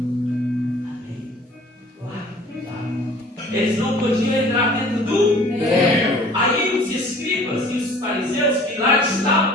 eles não podiam entrar dentro do Aí os escribas e os fariseus que lá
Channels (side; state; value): both; normal; correlation 0.49